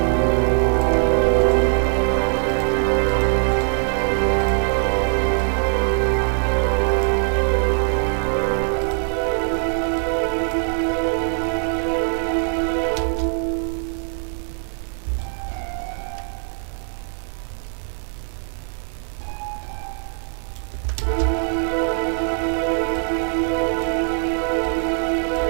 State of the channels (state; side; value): silent; left; 57 dB below the other